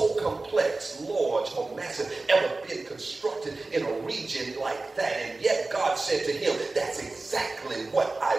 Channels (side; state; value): left; quieter; 3.3 dB